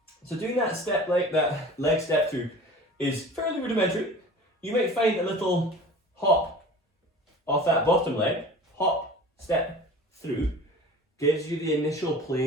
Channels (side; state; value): both; normal; correlation 0.40